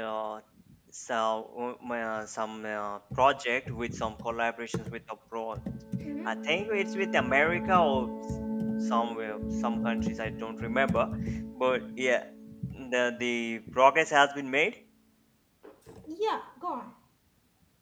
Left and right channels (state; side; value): identical; both; correlation 1.00